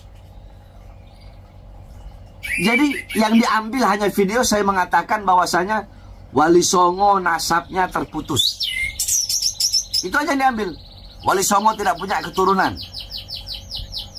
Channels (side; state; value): both; identical; correlation 1.00